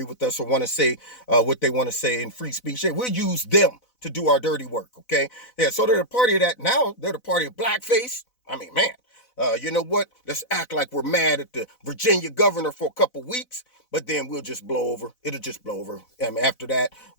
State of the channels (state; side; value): late; right; 4.0 ms